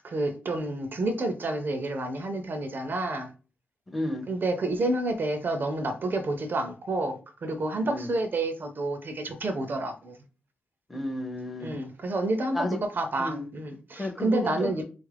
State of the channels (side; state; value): both; normal; correlation 0.76